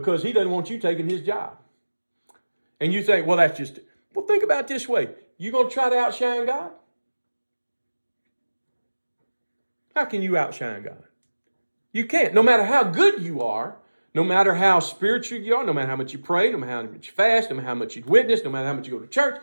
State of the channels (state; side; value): inverted; both; correlation -1.00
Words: he doesn't want you taking his job. And you think, well, Well, think about it this way. You going to try to outshine God? How can you outshine God? You can't. No matter how good you are, no matter how spiritual you are, no matter how much you pray, no matter how much you fast, no matter how much you witness, no matter how much you go to church,